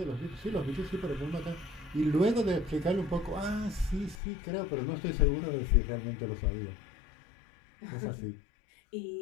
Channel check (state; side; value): drops out; right; at 4.2 s